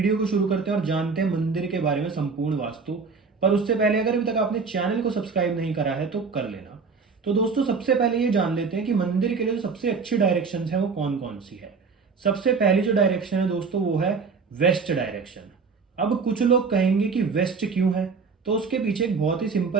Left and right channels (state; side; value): quieter; left; 5.0 dB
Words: को शुरू करते हैं और जानते हैं मंदिर के बारे में संपूर्ण वास्तु। पर उससे पहले अगर अभी तक आपने चैनल को सब्सक्राइब नहीं करा है तो कर लेना। तो दोस्तों, सबसे पहले ये जान लेते हैं कि मंदिर के लिए जो सबसे अच्छी डायरेक्शन है वो कौन कौन सी है। सबसे पहली जो डायरेक्शन है दोस्तों वो है वेस्ट डायरेक्शन। अब कुछ लोग कहेंगे कि वेस्ट क्यों है, तो उसके पीछे एक बहुत ही